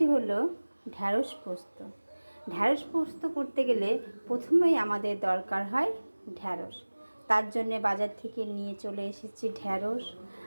হলো ঢ্যাঁড়স পোস্ত। ঢ্যাঁড়স পোস্ত করতে গেলে প্রথমেই আমাদের দরকার হয় ঢ্যাঁড়স। তার জন্যে বাজার থেকে নিয়ে চলে এসেছি ঢ্যাঁড়স,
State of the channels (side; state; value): both; inverted; correlation -1.00